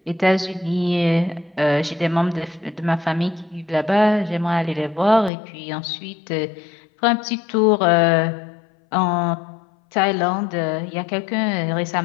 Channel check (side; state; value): right; drops out; at 5.3 s